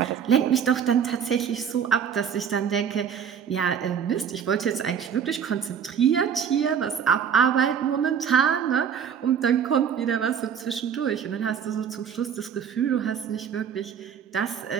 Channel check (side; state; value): left; quieter; 7.8 dB